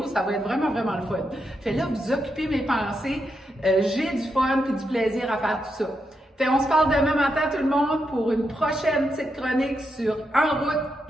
ça va être vraiment, vraiment le fun. Fait là, vous occupez mes pensées, j'ai du fun puis du plaisir à faire tout ça. Fait on se parle demain matin tout le monde pour une prochaine petite chronique sur En route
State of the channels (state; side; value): normal; both; correlation 0.84